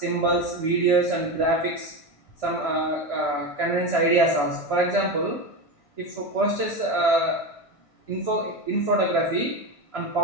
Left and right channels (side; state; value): right; late; 1.5 ms